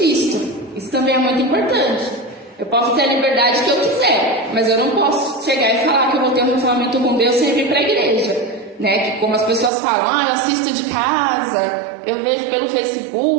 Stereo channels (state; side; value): drops out; left; at 9.7 s